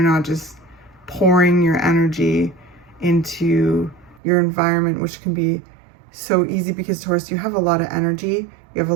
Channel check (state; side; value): drops out; left; at 4.2 s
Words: just pouring your energy into your environment, which can be so easy because, Taurus, you have a lot of energy, you have a